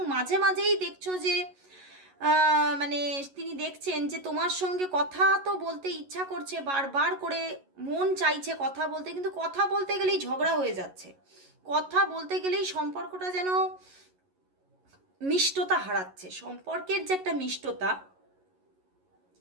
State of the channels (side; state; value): left; late; 11 ms